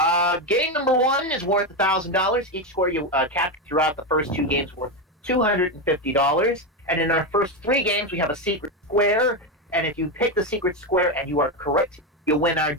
Game number 1 is worth $1,000. Each score you capture throughout the first 2 games worth $250. And in our first 3 games, we have a secret square. And if you pick the secret square and you are correct, you win our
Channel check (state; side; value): normal; both; correlation 0.11